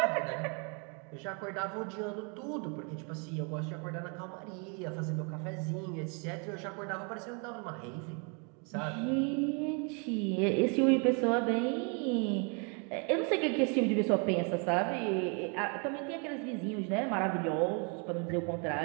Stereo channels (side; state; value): left; quieter; 36.1 dB